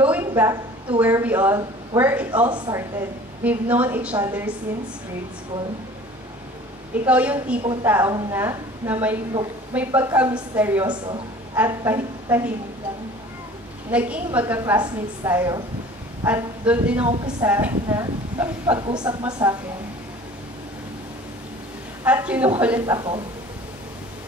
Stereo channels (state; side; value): normal; both; correlation 0.46